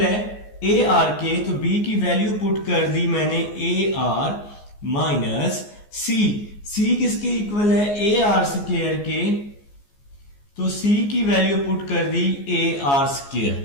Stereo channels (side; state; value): right; late; 14 ms